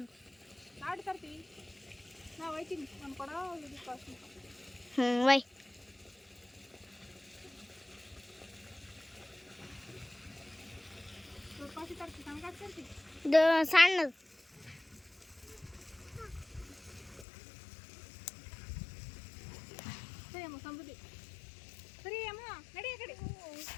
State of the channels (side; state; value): right; drops out; at 17.2 s